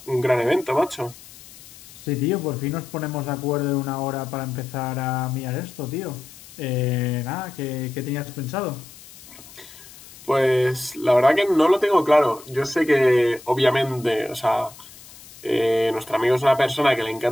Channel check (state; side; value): noise; left; hiss, 20 dB below the sound